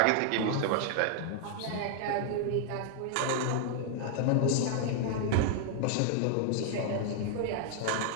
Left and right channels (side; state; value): both; different; correlation 0.00